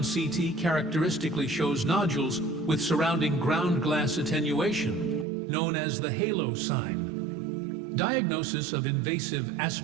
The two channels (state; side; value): drops out; left; at 5.2 s